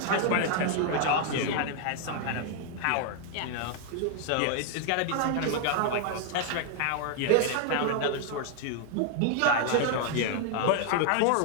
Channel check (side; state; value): both; different; correlation 0.00